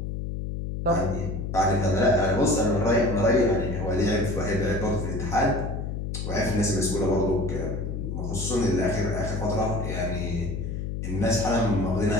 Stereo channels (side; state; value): left; noise; hum, 4 dB below the sound